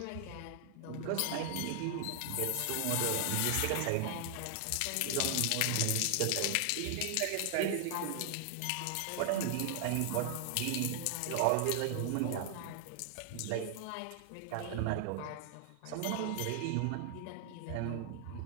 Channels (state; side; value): different; both; correlation 0.00